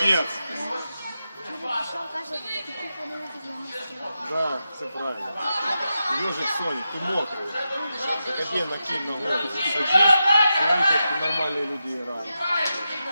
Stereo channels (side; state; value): both; inverted; correlation -0.89